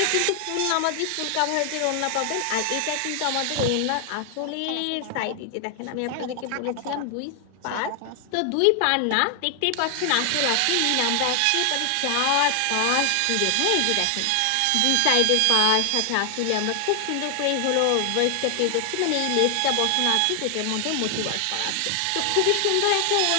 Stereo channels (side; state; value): both; different; correlation 0.00